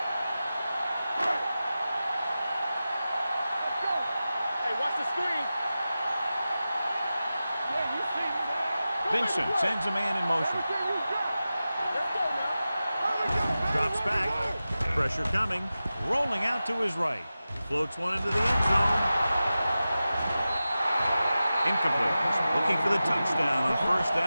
Hey, watch the screen. Yeah, you see me, man. Vincent sends a man in motion. Everything you got. Let's go now. Drops back. Pressure coming. Rolling out to his right. Floats one into the end zone. Incomplete. Looking for the touchdown on 1st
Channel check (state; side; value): inverted; both; correlation -0.94